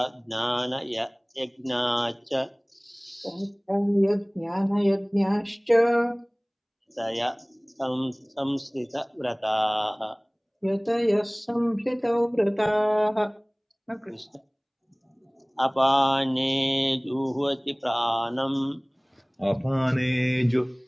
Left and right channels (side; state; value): both; identical; correlation 1.00